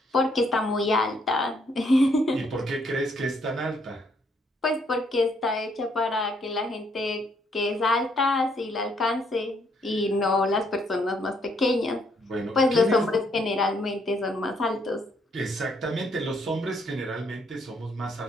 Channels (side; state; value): both; normal; correlation 0.70